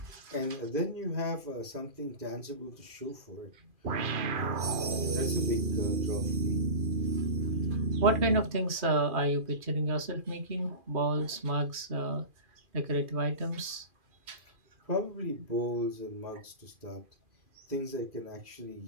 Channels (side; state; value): left; late; 2.4 ms